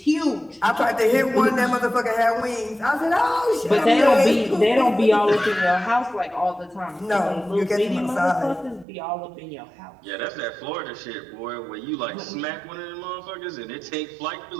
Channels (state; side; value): drops out; left; at 8.8 s